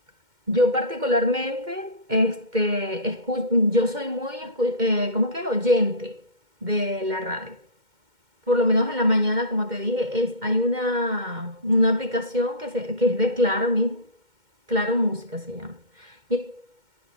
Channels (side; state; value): left; late; 2.1 ms